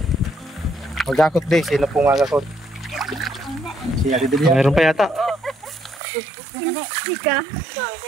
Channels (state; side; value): drops out; left; at 6.0 s